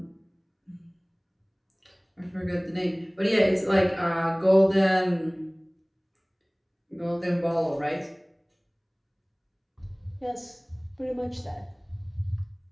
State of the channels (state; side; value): identical; both; correlation 1.00